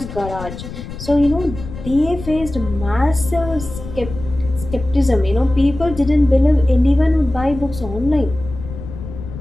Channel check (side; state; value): left; noise; rumble, 11 dB below the sound